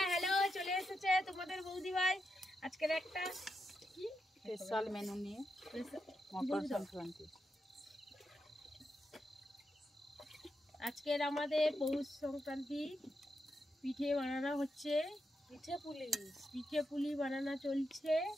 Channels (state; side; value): normal; both; correlation 0.85